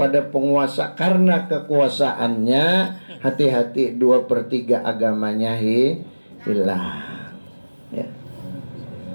penguasa karena kekuasaannya, hati-hati 2/3 agamanya hilang. Ya.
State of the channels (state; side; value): inverted; both; correlation -1.00